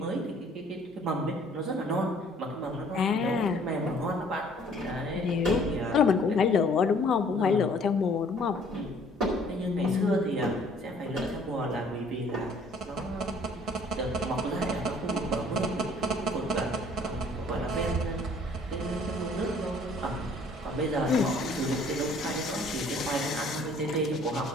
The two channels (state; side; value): normal; both; correlation 0.57